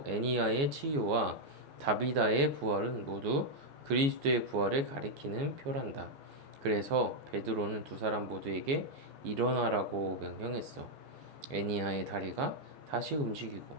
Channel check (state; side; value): late; left; 14 ms